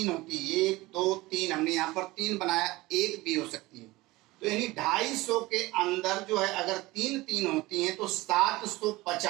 होती है। 1 2 3 हमने यहाँ पर 3 बनाया, 1 भी हो सकती है। तो यानी 250 के अंदर जो है अगर 3 होती हैं तो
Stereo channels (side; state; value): left; quieter; 20.1 dB